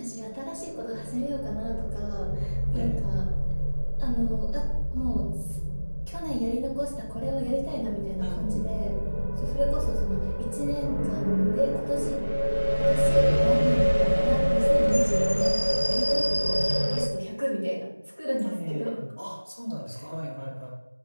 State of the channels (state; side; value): inverted; both; correlation -1.00